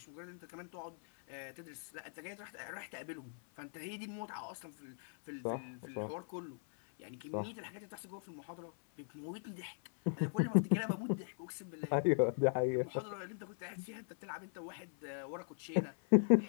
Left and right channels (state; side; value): silent; right; 51 dB below the other